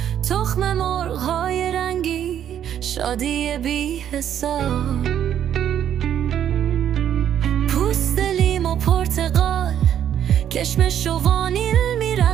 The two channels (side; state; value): left; quieter; 10.0 dB